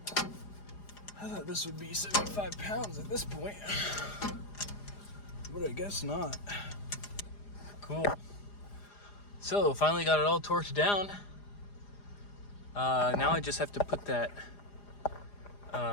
I thought this would be 75 pounds at this point, but I guess not. Cool. So, finally got it all torqued down. Now I just have to put that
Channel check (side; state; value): right; late; 4.9 ms